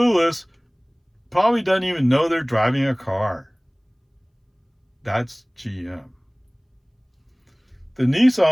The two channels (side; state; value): both; identical; correlation 1.00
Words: probably doesn't even know they're driving a car. That's GM. The